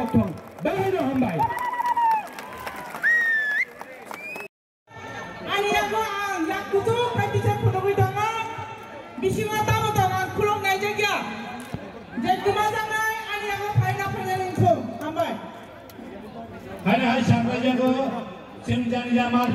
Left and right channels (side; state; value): both; identical; correlation 1.00